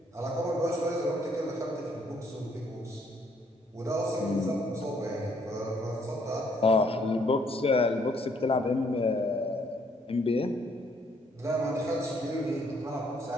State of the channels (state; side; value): normal; both; correlation 0.67